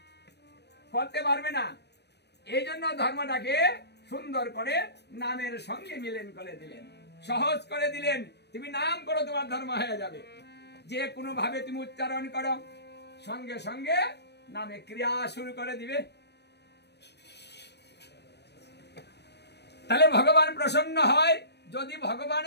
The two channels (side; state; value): right; late; 0.49 ms